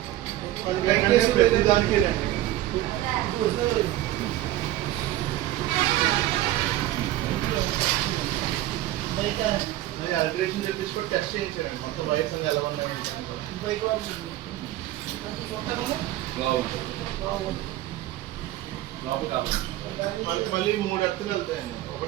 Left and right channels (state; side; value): quieter; left; 14.8 dB